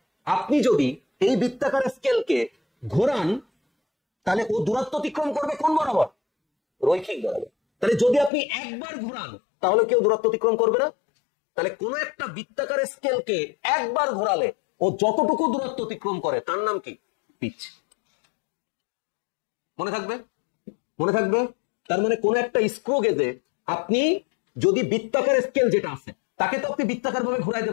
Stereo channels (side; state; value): right; drops out; at 8.3 s